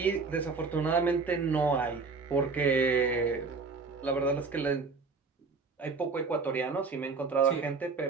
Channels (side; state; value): left; quieter; 4.5 dB